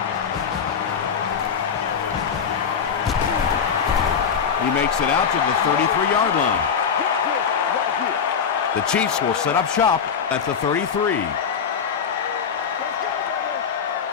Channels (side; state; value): right; quieter; 6.8 dB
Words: He makes it out to the 33-yard line. The Chiefs will set up shop at the 33.